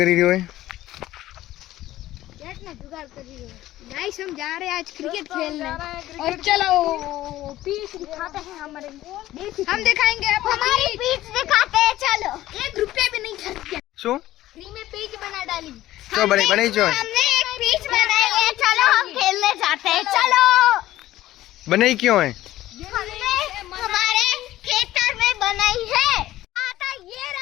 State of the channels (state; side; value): quieter; right; 15.0 dB